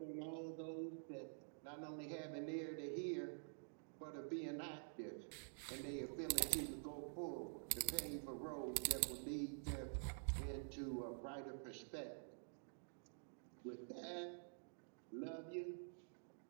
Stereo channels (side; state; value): left; silent; digital silence